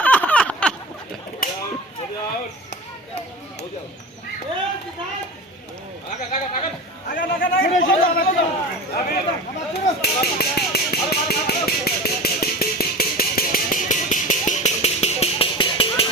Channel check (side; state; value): both; normal; correlation 0.32